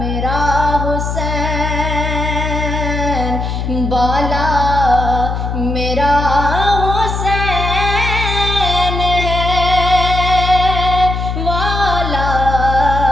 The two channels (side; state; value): left; noise; hum, 3 dB below the sound